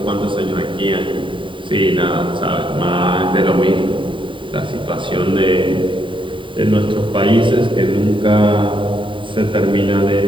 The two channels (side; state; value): left; late; 0.24 ms